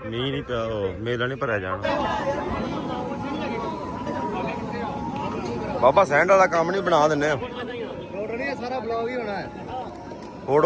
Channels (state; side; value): identical; both; correlation 1.00